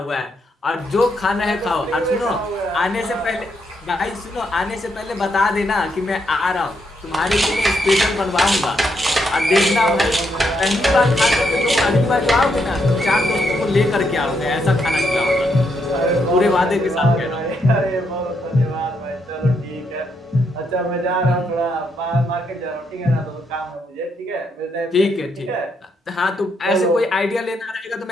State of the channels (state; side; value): normal; both; correlation 0.77